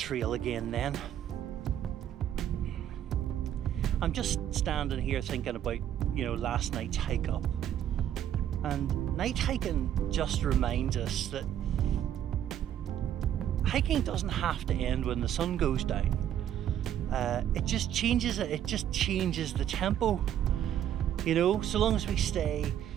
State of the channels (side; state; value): left; quieter; 10.6 dB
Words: again then. I'm just standing here thinking about, last night's hike up. And night hiking just reminds us that hiking doesn't have to end when the sun goes down. It just changes it. It just changes the tempo. So long as we stay